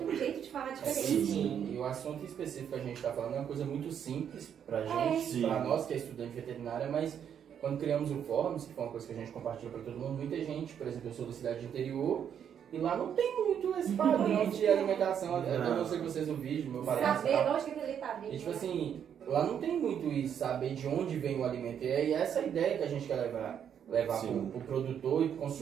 um jeito de falar diferente. Sim, e o assunto específico que a gente está falando é uma coisa muito simples pra gente, Sim. pra nós que é estudante de veterinária, mas quando criamos o Fórum, que foi uma coisa que a gente compartilhou para todo mundo, muita gente, por exemplo, eu sou da cidade de interior, e lá não tem muito esse padrão de alimentação, eu não sei que vocês no vídeo, meu padrão. Saber onde que aquele tá vindo. E tipo assim, lá não tem muito isso, saber de onde vem o alimento, e essa é a ideia que a gente quer levar pro produtor e pro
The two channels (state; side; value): quieter; left; 8.6 dB